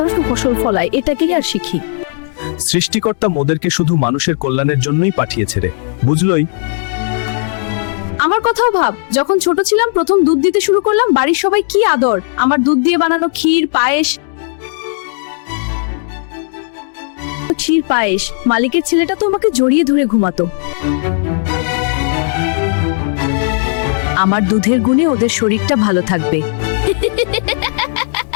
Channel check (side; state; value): right; silent; digital silence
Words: ফসল ফলায়, এটাকেই আর শিখি। সৃষ্টিকর্তা মোদেরকে শুধু মানুষের কল্যাণের জন্যই পাঠিয়েছে রে, বুঝলই? আমার কথাও ভাব, যখন ছোট ছিলাম প্রথম দুধ দিতে শুরু করলাম, বাড়ির সবাই কি আদর। আমার দুধ দিয়ে বানানো ক্ষীর পায়েস, মালিকের ছেলেটা তো আমাকে জড়িয়ে ধরে ঘুমাতো। আমার দুধের গুণে ওদের শরীরটা ভালো থাকবে।